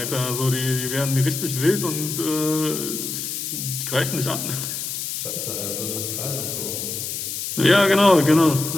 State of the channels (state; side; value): noise; left; hiss, 4 dB below the sound